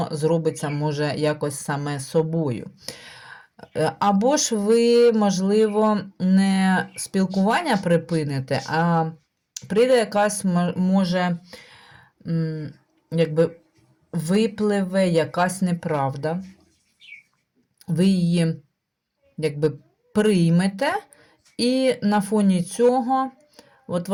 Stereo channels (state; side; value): identical; both; correlation 1.00